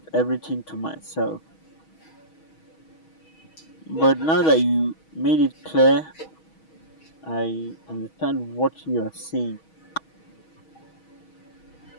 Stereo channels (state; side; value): late; right; 6.3 ms